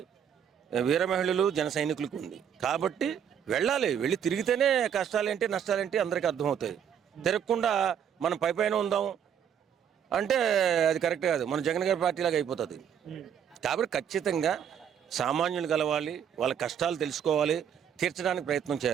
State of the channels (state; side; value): quieter; left; 8.5 dB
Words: వీర మహిళలు జన సైనికులకు ఉంది. కాబట్టి వెళ్ళి తిరిగితేనే కష్టాలేంటి నష్టాలేంటి అందరికీ అర్థమవుతాయి. తిరగకుండా మనం పైన ఉందాం అంటే అది కరెక్ట్ కాదు, మన జగన్ గారి పార్టీలాగా అయిపోతుంది. కాబట్టి ఖచ్చితంగా సామాన్యులు కలవాలి, వాళ్ళ కష్టాలు తెలుసుకోవాలి, తీర్చడానికి ప్రయత్నం